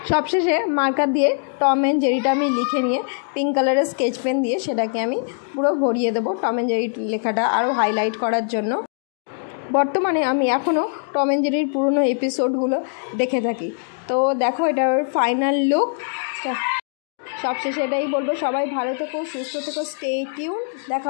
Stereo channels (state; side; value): silent; right; digital silence